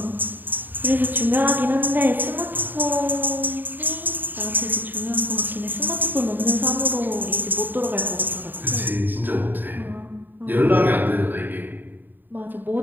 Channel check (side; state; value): left; late; 0.091 ms